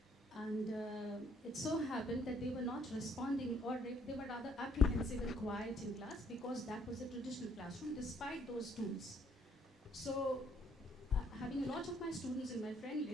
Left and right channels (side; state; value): both; normal; correlation 0.66